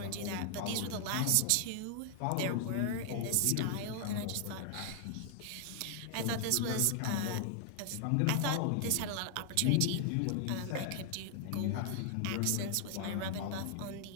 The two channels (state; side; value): different; both; correlation 0.00